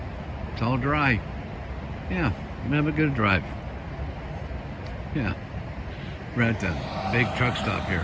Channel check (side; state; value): both; identical; correlation 1.00